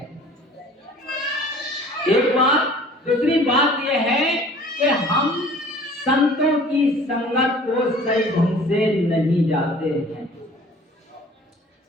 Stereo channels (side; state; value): both; normal; correlation 0.49